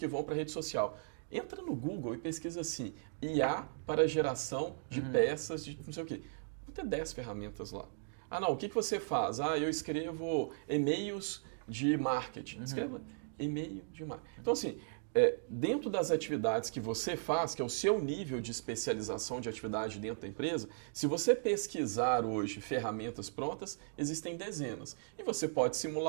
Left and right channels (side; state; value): left; silent; digital silence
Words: vão para a rede social. Entra no Google e pesquisa assim, IA para geração de peças de não sei o quê. Vão ter 10 ferramentas lá. O que você faz? Eu escrevo e-mails de marketing. Escreva e-mail de marketing. Então, assim, dentro das atividades que você faz, que é o seu nível de especialização de atividade dentro da empresa, se você pesquisar hoje ferramentas prontas, existem dezenas. E você pode